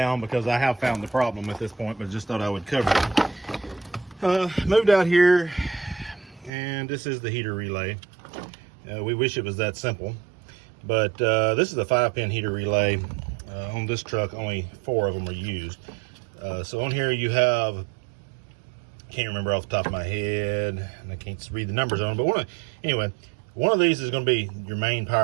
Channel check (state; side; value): drops out; left; at 6.5 s